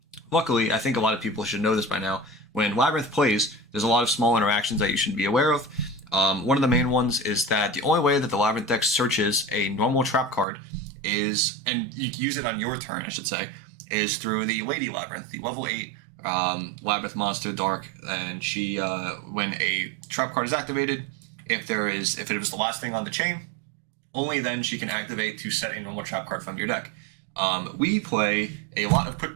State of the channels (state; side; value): drops out; left; at 10.5 s